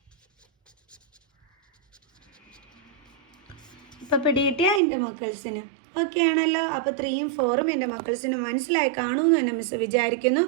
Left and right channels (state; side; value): drops out; left; at 4.8 s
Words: ഇപ്പോൾ പിടികിട്ടിയ എൻ്റെ മക്കൾസിന് ഓക്കെ ആണല്ലോ. അപ്പോൾ 3ഉം 4ഉം എൻ്റെ മക്കൾസിന് മനസ്സിലായി കാണുമെന്ന് തന്നെ മിസ് വിചാരിക്കുന്നു.